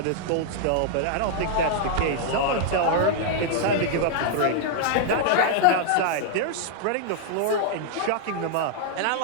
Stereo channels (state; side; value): different; both; correlation -0.01